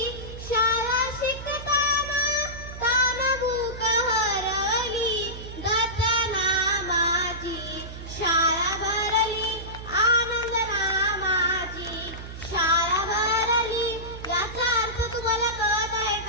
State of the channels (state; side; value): noise; right; hum, 11 dB below the sound